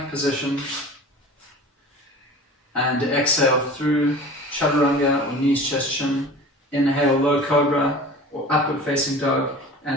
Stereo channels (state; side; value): normal; both; correlation 0.39